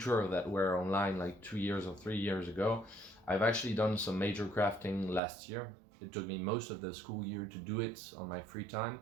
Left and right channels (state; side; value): drops out; left; at 5.2 s